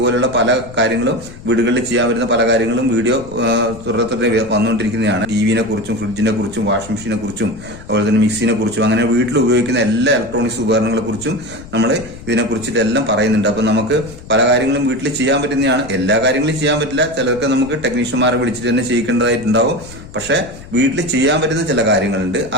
പല കാര്യങ്ങളും വീടുകളിൽ ചെയ്യാൻ വരുന്ന പല കാര്യങ്ങളും വീഡിയോ തുടരെ വന്നുകൊണ്ടിരിക്കുന്നതാണ്. ടിവിനെ കുറിച്ചും ഫ്രിഡ്ജിനെ കുറിച്ചും വാഷിംഗ് മെഷീനെ കുറിച്ചും അതുപോലെ തന്നെ മിക്സിനെ കുറിച്ചും അങ്ങനെ വീട്ടിൽ ഉപയോഗിക്കുന്ന എല്ലാ ഇലക്ട്രോണിക്സ് ഉപകരണങ്ങളെ കുറിച്ചും നമ്മൾ ഇതിനെ കുറിച്ചിട്ട് എല്ലാം പറയുന്നുണ്ട്. അപ്പൊ നമുക്ക് പല കാര്യങ്ങളും വീട്ടിൽ ചെയ്യാൻ പറ്റുന്നതാണ്. എല്ലാ കാര്യങ്ങളും ചെയ്യാൻ പറ്റില്ല, ചിലർക്ക് നമുക്ക് ടെക്നീഷ്യന്മാരെ വിളിച്ചിട്ട് തന്നെ ചെയ്യിക്കേണ്ടതായിട്ടുണ്ടാവും. പക്ഷെ വീട്ടിൽ ചെയ്യാൻ പറ്റുന്ന ചില കാര്യങ്ങളുണ്ട്,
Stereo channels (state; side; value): noise; left; rumble, 17 dB below the sound